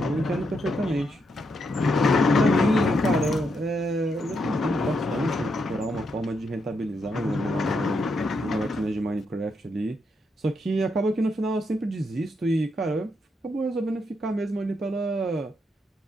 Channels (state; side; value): normal; both; correlation 0.80